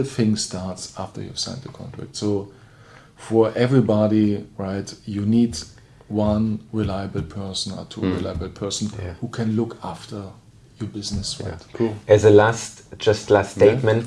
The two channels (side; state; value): both; identical; correlation 1.00